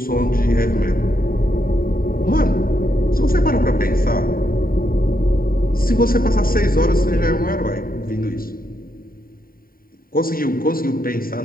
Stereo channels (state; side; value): late; right; 0.42 ms